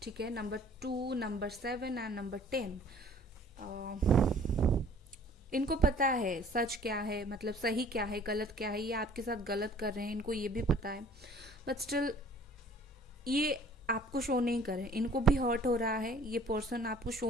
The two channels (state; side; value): normal; both; correlation 0.53